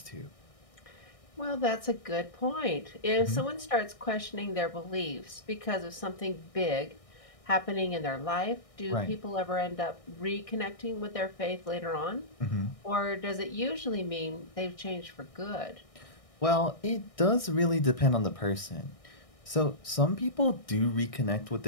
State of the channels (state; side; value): late; right; 1.6 ms